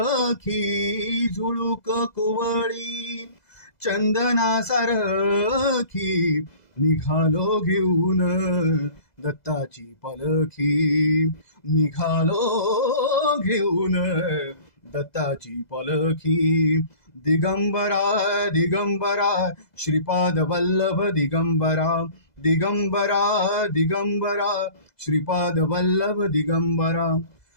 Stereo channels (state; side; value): late; right; 2.0 ms